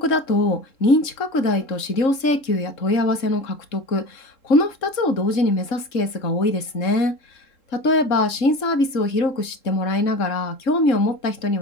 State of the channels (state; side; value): late; right; 3.7 ms